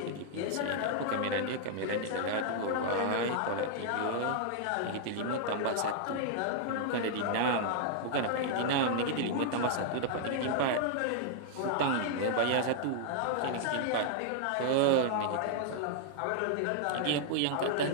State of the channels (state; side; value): different; both; correlation -0.01